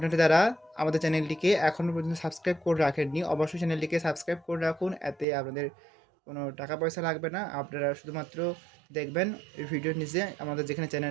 যারা আমাদের চ্যানেলটিকে এখনও পর্যন্ত সাবস্ক্রাইব করে রাখেননি, অবশ্যই চ্যানেলটিকে সাবস্ক্রাইব করে রাখুন। এতে আপনাদের কোনো টাকা পয়সা লাগবে না। আপনারা শুধুমাত্র দেখবেন এই ভিডিওর নিচে আমাদের যেখানে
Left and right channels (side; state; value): left; drops out; at 5.2 s